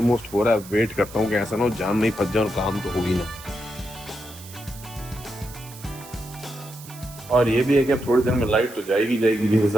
हो रहा है, वेट करता हूँ कि ऐसा ना हो जाम में ही फंस जाऊं, काम तो होगी ना। और ये भी है कि अब थोड़ी देर में लाइट तो जाएगी जिस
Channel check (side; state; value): right; noise; hiss, 17 dB below the sound